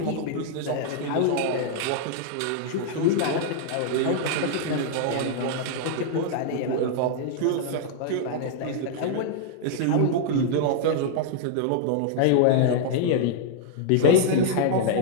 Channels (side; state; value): both; different; correlation -0.01